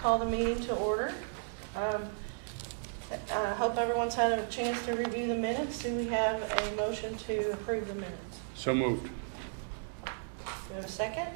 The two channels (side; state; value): left; silent; digital silence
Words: the meeting to order. I hope everyone's had a chance to review the minutes. Do we have a motion to approve the minutes? So moved. Do we have a second?